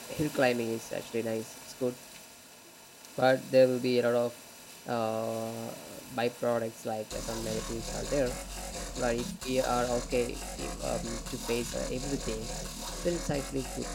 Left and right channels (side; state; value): both; identical; correlation 1.00